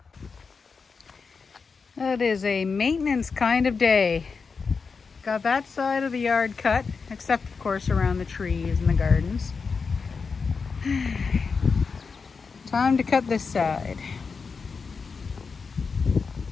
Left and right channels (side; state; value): right; quieter; 5.1 dB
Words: That is a maintenance kind of day. Got that side of the yard cut, except of course around the trees and the gardens. Time to cut this side.